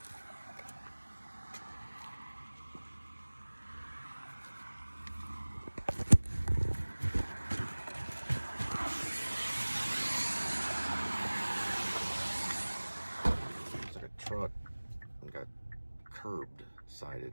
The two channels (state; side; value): inverted; both; correlation -1.00